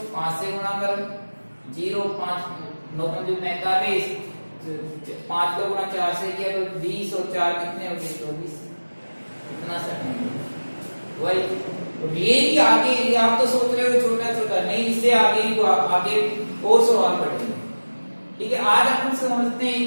5 से गुणा करो 0 5 9 5 45, 5 का गुणा 4 से किया तो 20, और 4 कितने हो गए 24, कितना सही वही। ये ही आगे आप तो सोच रहे हो छोटा छोटा, नहीं इससे आगे और सवाल पढ़ेंगे, ठीक है। आज अपन समझते हैं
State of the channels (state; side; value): inverted; both; correlation -1.00